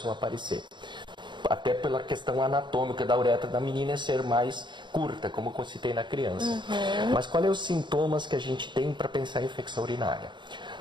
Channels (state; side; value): late; left; 0.22 ms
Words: a aparecer. Até pela questão anatômica da uretra da menina ser mais curta, como eu citei na criança. Mas quais são os sintomas que a gente tem para pensar em infecção urinária?